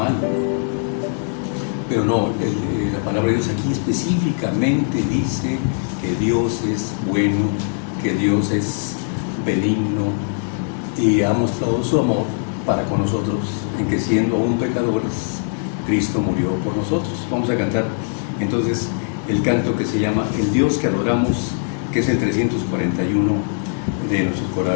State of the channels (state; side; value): silent; right; 61 dB below the other